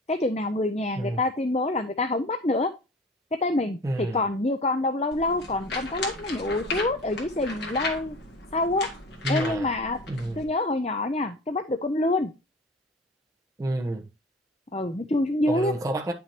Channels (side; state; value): both; normal; correlation 0.40